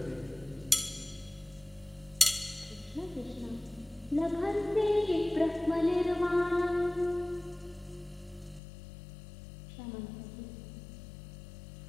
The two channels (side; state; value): right; drops out; at 8.6 s